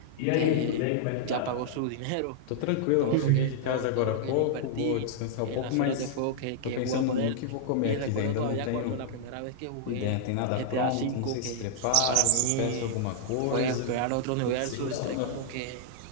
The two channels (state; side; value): different; both; correlation -0.01